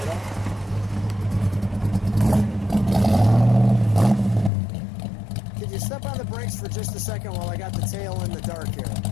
Could you step on the brakes for just a second while I got the tail in the dark here?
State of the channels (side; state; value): right; drops out; at 4.5 s